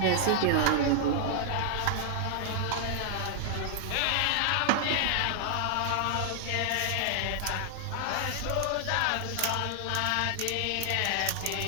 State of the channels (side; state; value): both; different; correlation 0.00